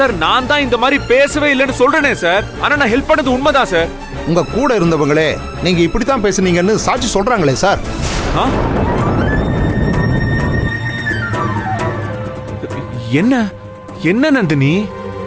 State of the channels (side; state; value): both; identical; correlation 1.00